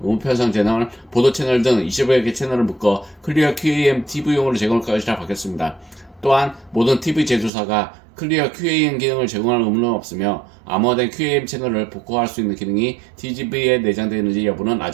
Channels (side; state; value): left; drops out; at 7.5 s